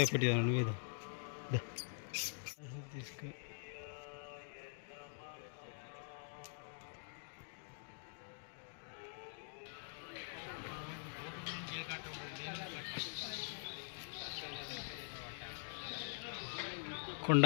పెట్టి నువ్వేదో తీసుకు.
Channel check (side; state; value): right; silent; digital silence